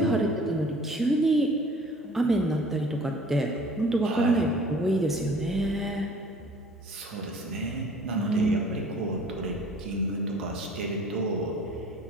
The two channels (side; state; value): both; normal; correlation 0.50